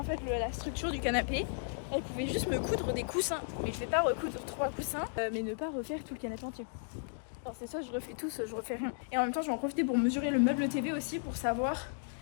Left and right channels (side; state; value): right; silent; digital silence